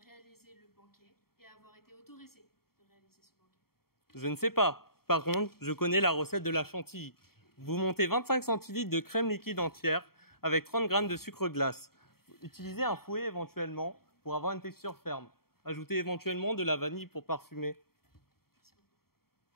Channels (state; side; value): late; right; 0.94 ms